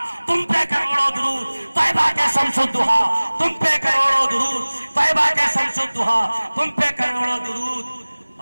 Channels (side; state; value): both; inverted; correlation -1.00